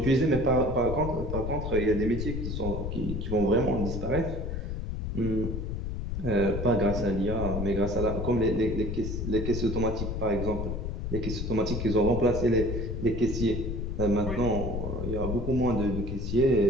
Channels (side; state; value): left; noise; rumble, 3 dB below the sound